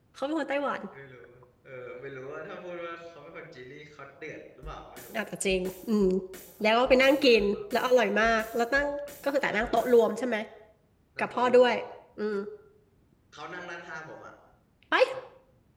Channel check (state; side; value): identical; both; correlation 1.00